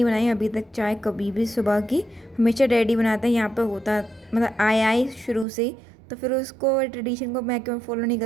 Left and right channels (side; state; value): left; drops out; at 5.5 s